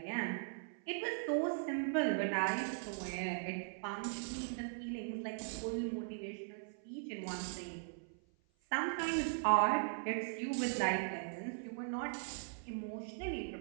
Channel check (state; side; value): silent; left; 51 dB below the other